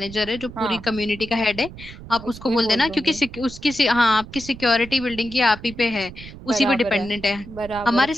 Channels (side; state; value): right; noise; rumble, 15 dB below the sound